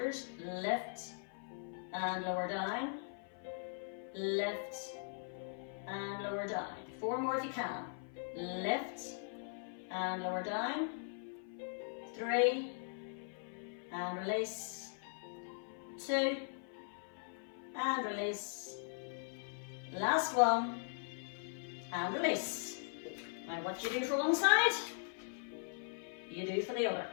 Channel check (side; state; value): right; silent; 51 dB below the other